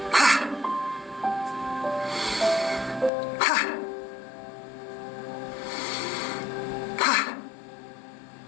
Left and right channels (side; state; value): right; drops out; at 3.1 s